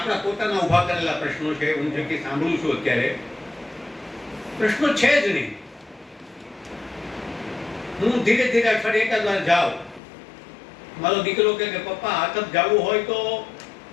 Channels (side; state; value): right; drops out; at 10.0 s